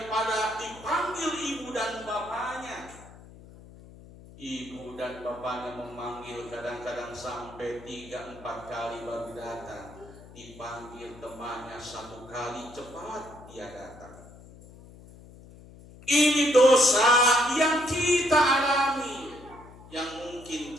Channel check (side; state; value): left; noise; hum, 20 dB below the sound